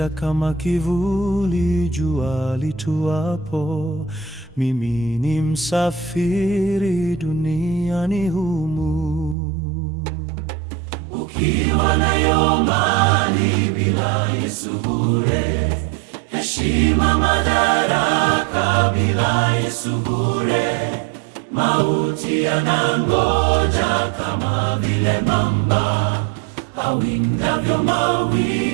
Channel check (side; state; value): left; drops out; at 9.3 s